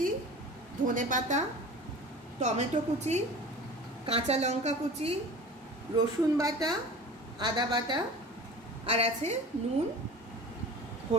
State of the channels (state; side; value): normal; both; correlation 0.38